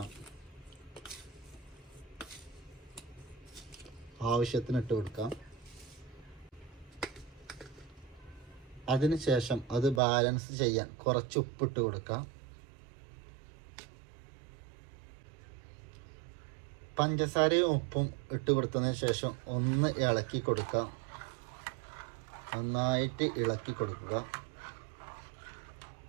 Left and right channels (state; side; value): drops out; left; at 10.0 s